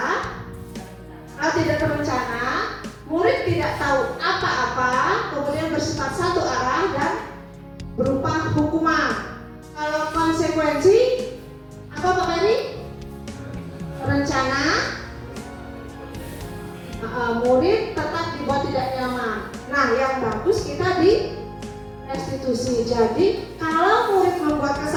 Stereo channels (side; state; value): both; identical; correlation 1.00